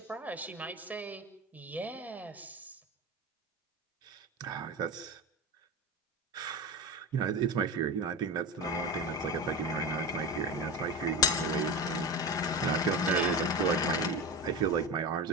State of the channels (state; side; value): normal; both; correlation 0.21